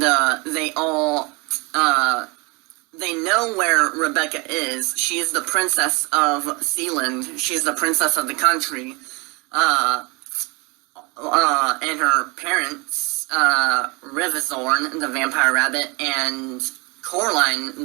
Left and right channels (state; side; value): quieter; left; 28.4 dB